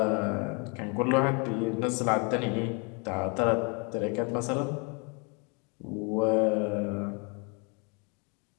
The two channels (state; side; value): quieter; right; 33.6 dB